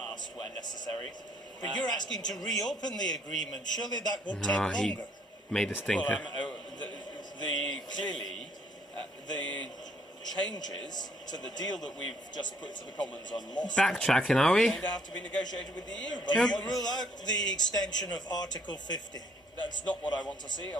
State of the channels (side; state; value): both; normal; correlation 0.65